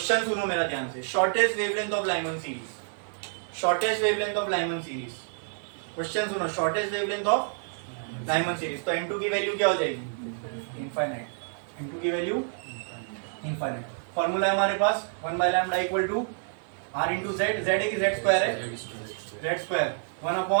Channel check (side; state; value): left; silent; 59 dB below the other